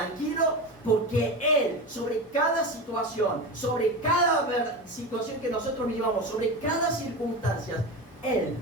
porque Él, sobre cada situación, sobre cada situación que nosotros vivamos, sobre cada circunstancia, Él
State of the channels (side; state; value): both; normal; correlation 0.24